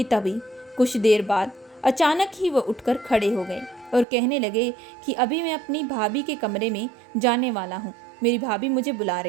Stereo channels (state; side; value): drops out; left; at 4.0 s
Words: तभी कुछ देर बाद अचानक ही वह उठकर खड़े हो गए और कहने लगे कि अभी मैं अपनी भाभी के कमरे में जाने वाला हूँ, मेरी भाभी मुझे बुला